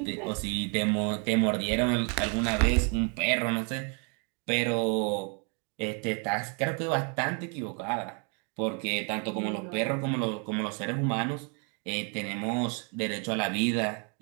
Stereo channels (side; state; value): left; quieter; 37.2 dB